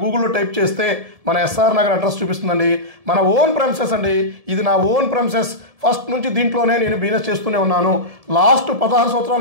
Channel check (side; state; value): left; late; 1.7 ms